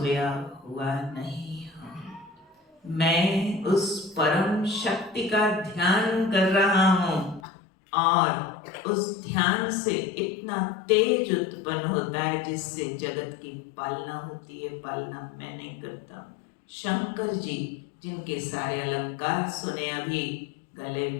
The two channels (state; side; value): drops out; right; at 7.4 s